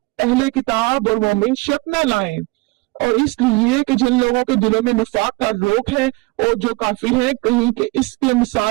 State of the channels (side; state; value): left; quieter; 23.9 dB